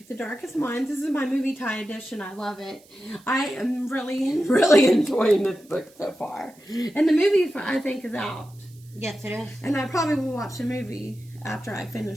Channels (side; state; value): right; noise; hiss, 27 dB below the sound